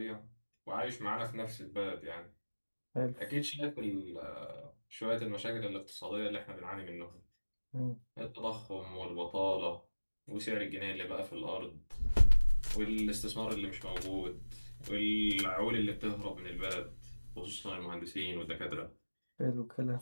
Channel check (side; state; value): both; inverted; correlation -1.00